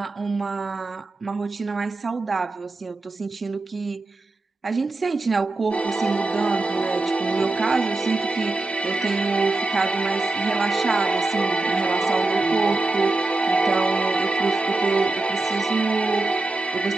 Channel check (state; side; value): quieter; left; 3.2 dB